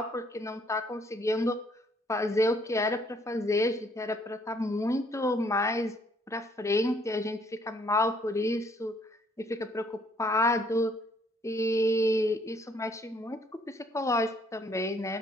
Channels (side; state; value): both; normal; correlation 0.65